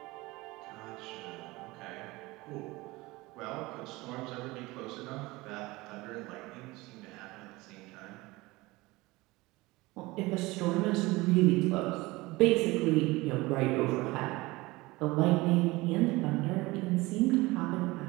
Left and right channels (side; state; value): left; quieter; 21.4 dB